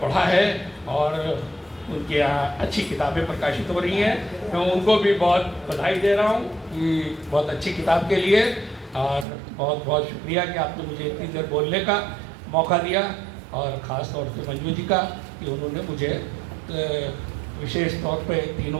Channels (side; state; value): left; drops out; at 9.2 s